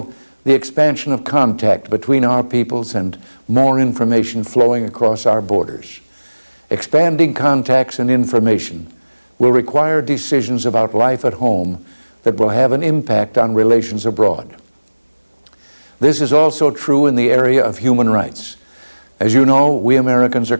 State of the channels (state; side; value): inverted; both; correlation -1.00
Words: the expansion of contact between our peoples and more information flowing across our borders. Expanding contacts and information will require decisions about life at home that will have an impact on relations abroad. This is also true in the area of human rights. As you know, we Americans are